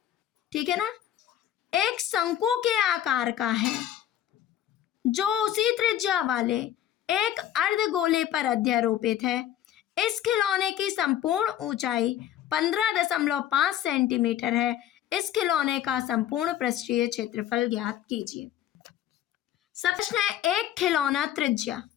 ठीक है ना, एक शंकु के आकार का है जो उसी त्रिज्या वाले एक अर्धगोले पर अध्यारोपित है। इस खिलौने की संपूर्ण ऊंचाई 15.5 सेंटीमीटर है। इस खिलौने का संपूर्ण पृष्ठीय क्षेत्रफल ज्ञात कीजिए। सब प्रश्न है, एक खिलौना त्रिज्या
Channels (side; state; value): right; quieter; 11.6 dB